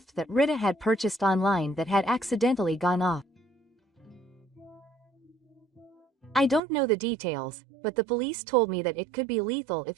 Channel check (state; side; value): drops out; left; at 6.6 s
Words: that Rita had purchased online that had accidentally gone off. I don't know the details, but the police told me that it could be lethal